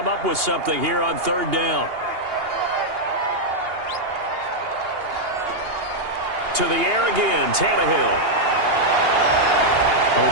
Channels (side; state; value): left; late; 2.8 ms